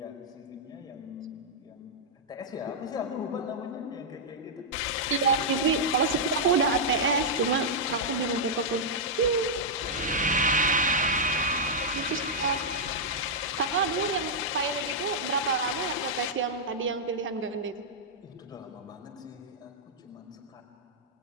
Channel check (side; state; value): both; normal; correlation -0.06